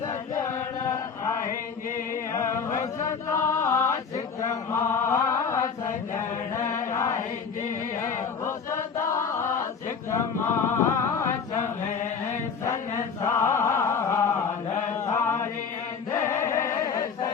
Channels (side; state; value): right; quieter; 6.0 dB